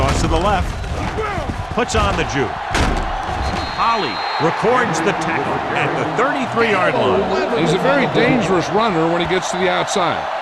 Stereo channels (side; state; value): both; identical; correlation 1.00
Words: to the left. Puts on the juke. Holly records the tackle at the 33-yard line. He's a very dangerous runner when he gets to the outside.